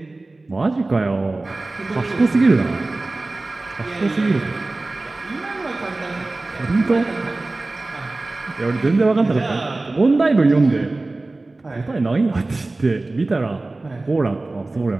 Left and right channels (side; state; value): left; quieter; 3.1 dB